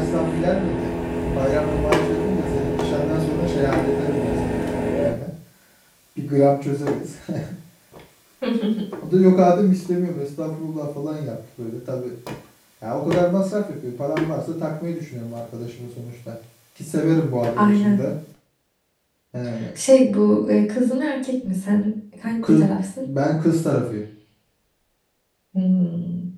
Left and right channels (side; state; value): both; identical; correlation 1.00